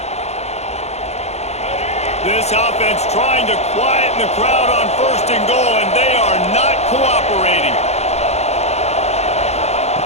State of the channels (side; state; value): right; late; 0.31 ms